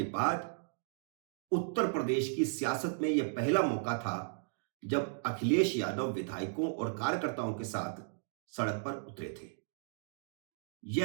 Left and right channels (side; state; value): left; silent; digital silence